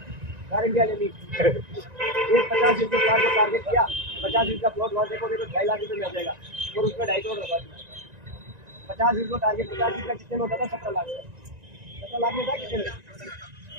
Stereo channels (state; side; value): late; left; 1.9 ms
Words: गारंटी ले ली। एक 50 दिन के प्लाट को टारगेट किया, 50 दिन का प्लॉट वहाँ देखोगे तो 2.5 लाख रुपये मिल जाएगा और उसमें 2.5 करोड़ लगा दिया। 50 दिन को टारगेट, 50 दिन का कितने में होता था? 17 लाख। 17 लाख में था कितने में?